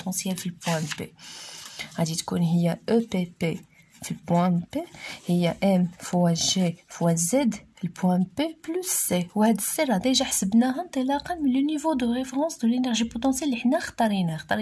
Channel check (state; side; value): identical; both; correlation 1.00